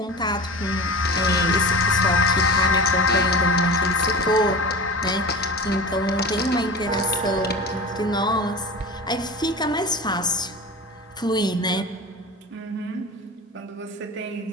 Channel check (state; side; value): normal; both; correlation 0.32